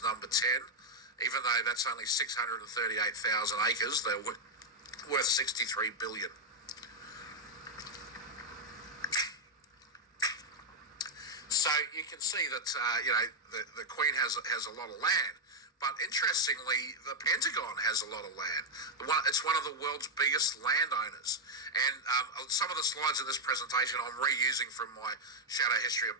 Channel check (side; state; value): both; normal; correlation 0.02